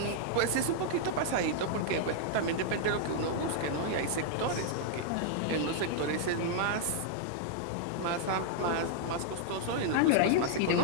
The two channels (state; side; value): different; both; correlation -0.01